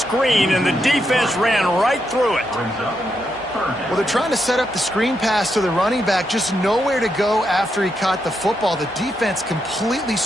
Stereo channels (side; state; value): both; normal; correlation 0.82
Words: and the defense ran right through it. Well, they're trying to set up the screen pass to the running back, just nowhere to go after he caught the football. The defense completely